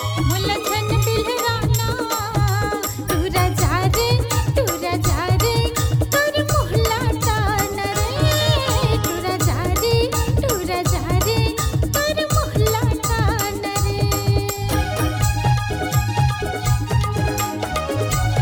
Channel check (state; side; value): identical; both; correlation 1.00